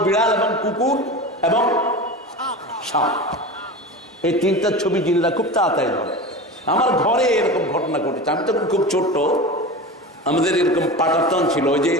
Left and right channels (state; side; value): normal; both; correlation 0.29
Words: বিড়াল এবং কুকুর এবং সাপ। এই 3টা ছবি জিনরা খুব তাড়াতাড়ি ধরে। আমার ঘরে এরকম ঘটনা ঘটেছে। আমি তখন খুব ছোট্ট, আমাদের এরকম পাটাতন ছিল, ওই যে